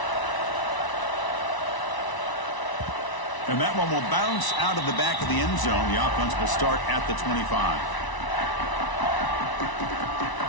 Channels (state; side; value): late; right; 1.0 ms